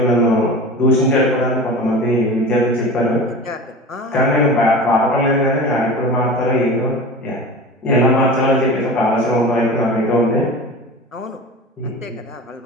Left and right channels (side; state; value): both; normal; correlation 0.34